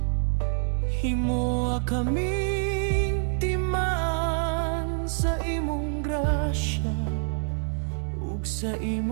Himoa kaming timaan sa imong grasya ug sa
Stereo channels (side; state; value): left; silent; 60 dB below the other